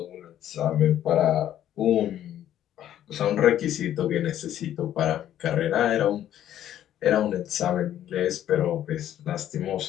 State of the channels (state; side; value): quieter; right; 11.5 dB